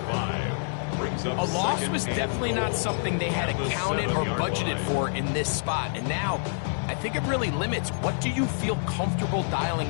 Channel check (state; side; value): silent; right; digital silence